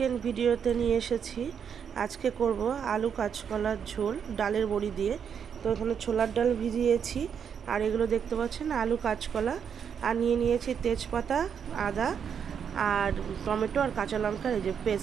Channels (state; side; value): quieter; left; 7.5 dB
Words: ভিডিওতে নিয়ে এসেছি, আজকে করব আলু কাঁচকলার ঝোল ডালের বড়ি দিয়ে। তো এখানে ছোলার ডাল ভিজিয়েছি, আর এগুলো দেখতে পাচ্ছেন আলু কাঁচকলা, আর নিয়েছি তেজপাতা, আদা আর টমেটো আর কাঁচা লঙ্কার এই যে